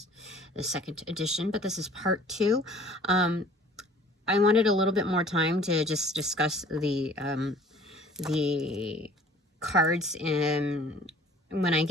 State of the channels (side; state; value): both; normal; correlation 0.51